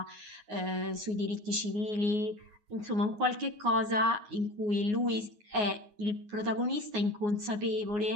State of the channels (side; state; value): left; late; 9.6 ms